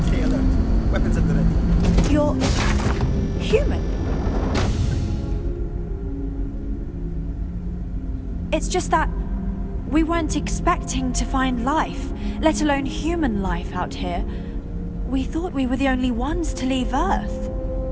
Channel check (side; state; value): both; identical; correlation 1.00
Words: Stay alert. Weapons at the ready. You're human. It's just that we weren't expecting to find life, let alone human life out here. We thought we were the only ones to leave Earth.